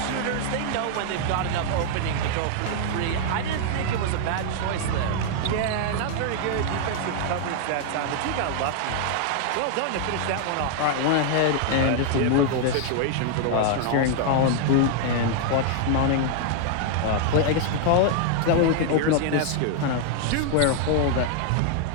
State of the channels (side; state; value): both; different; correlation 0.00